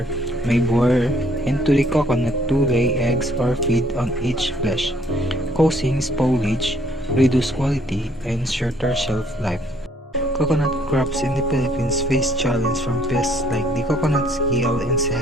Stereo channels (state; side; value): normal; both; correlation 0.64